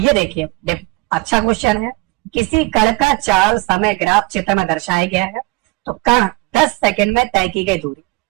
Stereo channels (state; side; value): quieter; left; 24.2 dB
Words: देखिए, अच्छा क्वेश्चन है, किसी कण का चाल समय ग्राफ चित्र में दर्शाया गया है, तो कण 10 सेकंड में तय की गई दूरी,